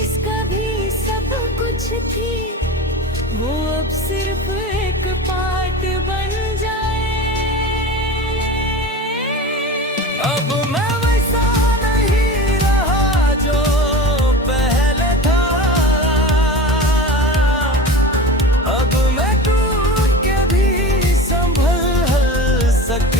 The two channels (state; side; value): normal; both; correlation 0.32